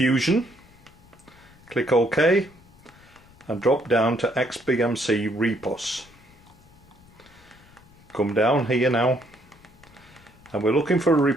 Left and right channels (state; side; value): noise; left; rumble, 26 dB below the sound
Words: click OK, and drop down to XBMC Repos. Come down here now, and we're looking for a